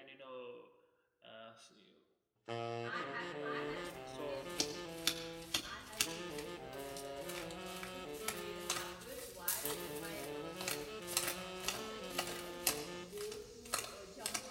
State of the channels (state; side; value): identical; both; correlation 1.00